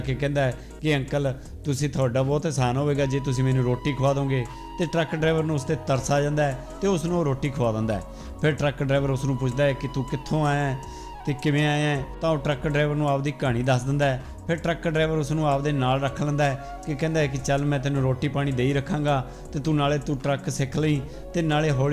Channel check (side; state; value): both; identical; correlation 1.00